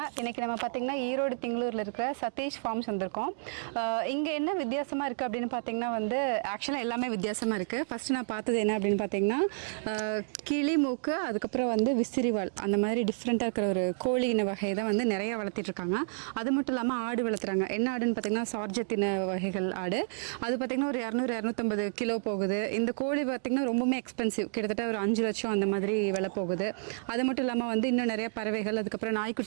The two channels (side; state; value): left; silent; digital silence